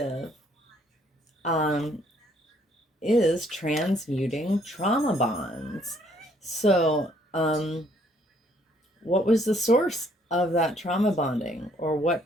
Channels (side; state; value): both; normal; correlation 0.65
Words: is transmuting trauma bonds. So, what was the source of that trauma bonding, or what